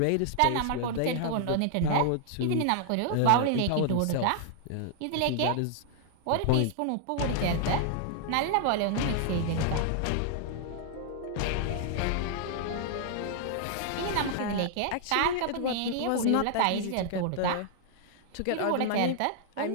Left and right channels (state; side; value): different; both; correlation -0.01